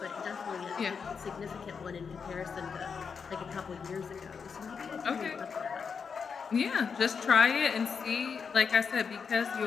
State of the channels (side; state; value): right; quieter; 6.0 dB